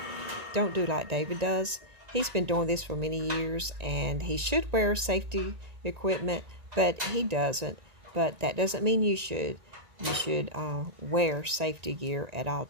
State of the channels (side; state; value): left; late; 1.9 ms